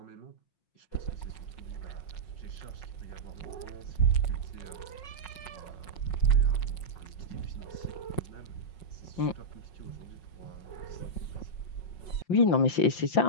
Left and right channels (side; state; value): right; late; 5.5 ms